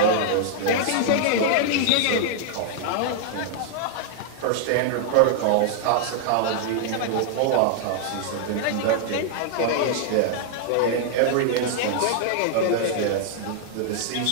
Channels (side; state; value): both; different; correlation 0.00